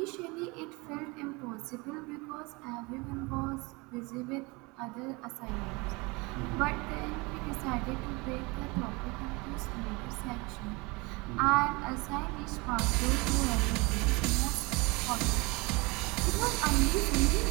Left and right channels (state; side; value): quieter; left; 26.1 dB